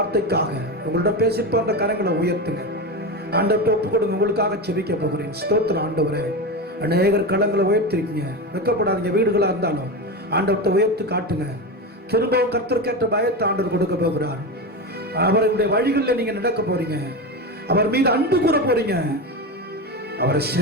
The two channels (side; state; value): both; normal; correlation 0.19